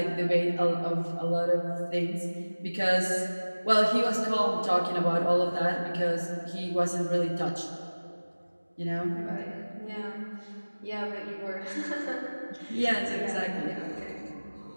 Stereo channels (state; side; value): inverted; both; correlation -1.00